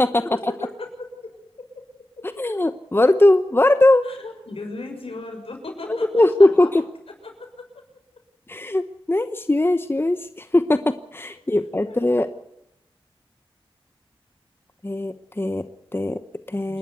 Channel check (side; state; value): both; normal; correlation 0.94